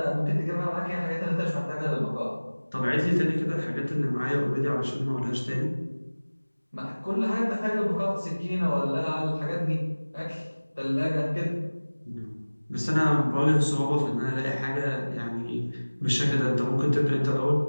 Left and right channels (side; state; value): both; inverted; correlation -1.00